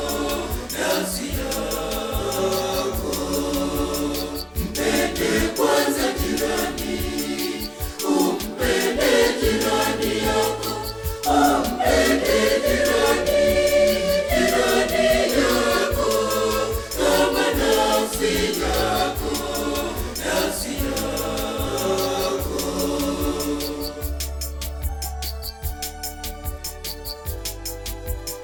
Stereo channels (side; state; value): both; identical; correlation 1.00